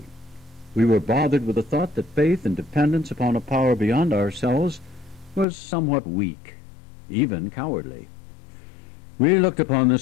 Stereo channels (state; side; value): drops out; right; at 5.5 s